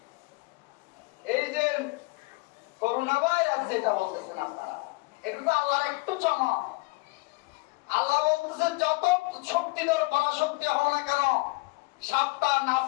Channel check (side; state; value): right; quieter; 25.2 dB